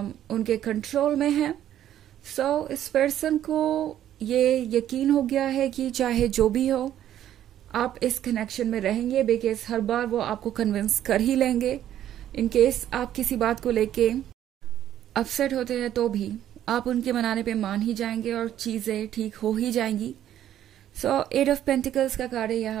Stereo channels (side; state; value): left; quieter; 11.4 dB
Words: उनके कंट्रोल में हैं। सो इस पर्सन को ये यकीन हो गया है कि चाहे जो भी हो आप इस कनेक्शन में रहेंगे, बिकॉज हर बार वो आपको कन्विंस कर ही लेंगे। इन केस आप किसी बात को लेके अपसेट होते हैं तो भी आप उनके मनाने पे मान ही जाएंगे और चीज़ें ठीक हो ही जाएंगी। सो 8 ऑफ पेंटिकल्स का कार्ड है